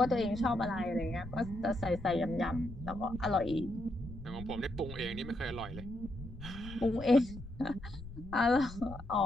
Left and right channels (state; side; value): noise; left; rumble, 13 dB below the sound